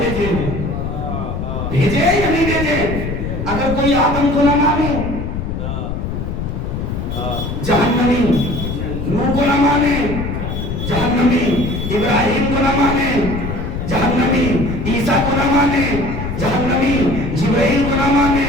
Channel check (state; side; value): noise; left; rumble, 4 dB below the sound